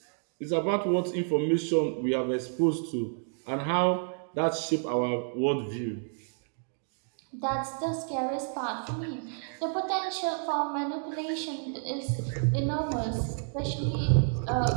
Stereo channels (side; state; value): left; silent; 58 dB below the other